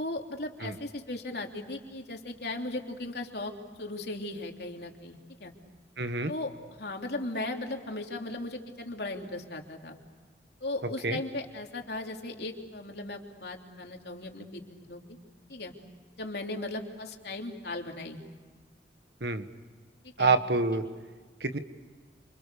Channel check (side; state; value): both; normal; correlation -0.04